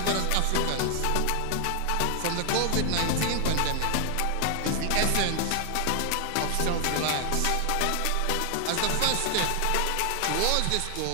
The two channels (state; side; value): different; both; correlation 0.00